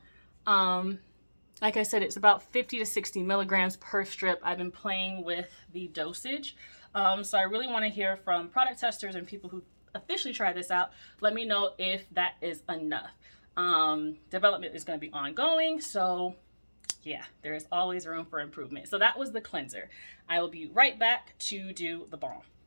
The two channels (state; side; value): inverted; both; correlation -1.00